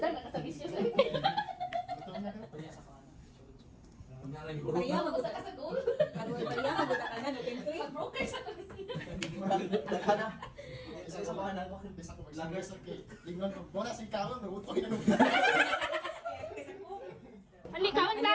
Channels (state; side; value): identical; both; correlation 1.00